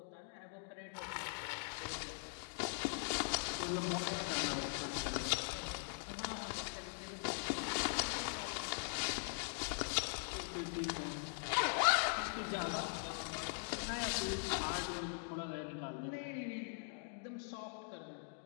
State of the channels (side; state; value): right; silent; digital silence